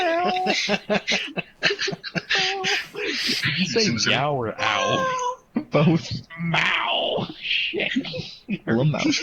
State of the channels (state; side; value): identical; both; correlation 1.00